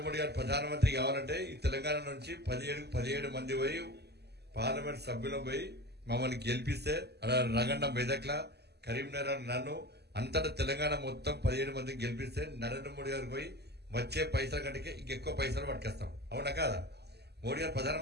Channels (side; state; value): left; late; 0.48 ms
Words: మోడీ గారు ప్రధానమంత్రి కావాలంటే ఈ తెలంగాణ నుంచి 17 మంది పోయి పార్లమెంట్ సభ్యులు పోయి మమ్మల్ని గెలిపిస్తే రగన్న మెదక్లా కరీంనగర్ నన్ను అంతటా తెలంగాణ మొత్తం 17 మందిని గెలిపిస్తే నరేంద్ర మోడీ గారు పోయి వచ్చే పైసల కంటే ఇంకెక్కువ పైసలు పట్టుకొస్తాం. అవునా కాదా? మోడీ గారు